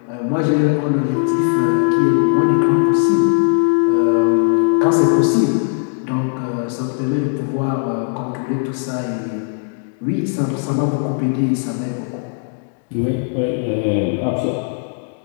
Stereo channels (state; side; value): silent; right; 59 dB below the other